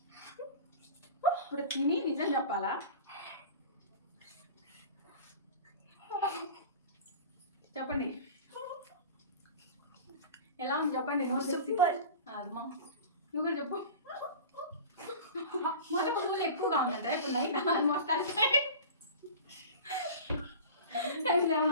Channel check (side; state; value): both; inverted; correlation -0.36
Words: ఇప్పుడు తిని నిజం చెప్పాలా? చెప్పండి ఎలా ఉంది చెప్పండి. సూపర్. అమ్మా నువ్వు కూడా చెప్పు. మళ్ళీ పువ్వులు ఎక్కువగా ఉందంటే ఇప్పుడు నైట్ ఆల్మోస్ట్